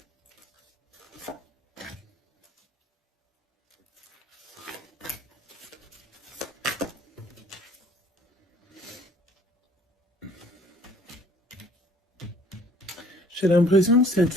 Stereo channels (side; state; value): both; normal; correlation 0.56